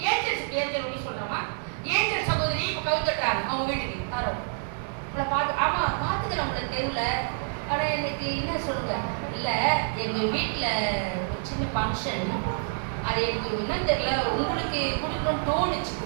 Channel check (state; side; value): silent; left; 60 dB below the other